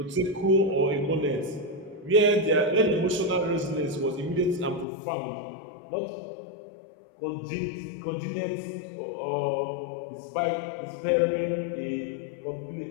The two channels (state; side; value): drops out; right; at 4.9 s